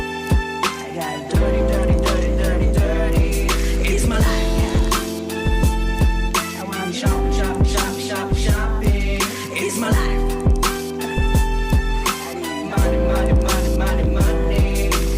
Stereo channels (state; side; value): identical; both; correlation 1.00